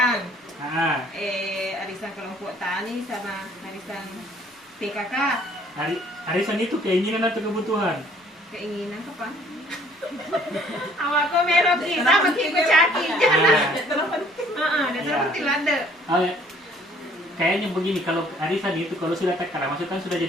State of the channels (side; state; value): both; normal; correlation 0.59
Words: Arisan kelompok tani sama arisan PKK. Arisan itu keinginan atau kebutuhan? Keinginan kapan? Awak kau merok kita makin kecaki jangan. Dasar penting ada. Kayaknya begini, kalau arisan itu kalau sudah terkala masuk kan sudah